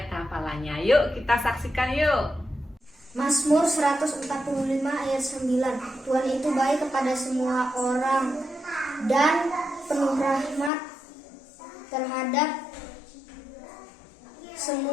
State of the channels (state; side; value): drops out; right; at 10.7 s